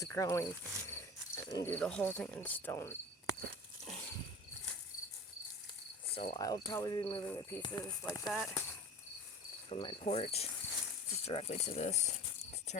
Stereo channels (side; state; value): both; normal; correlation 0.36